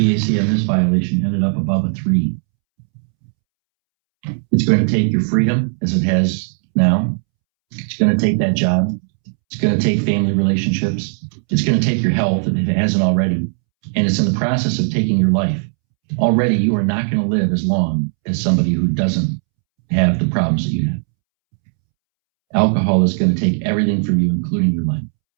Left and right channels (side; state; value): left; silent; 68 dB below the other